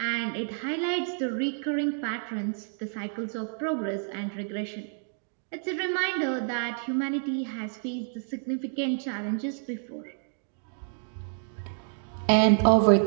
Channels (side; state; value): left; silent; digital silence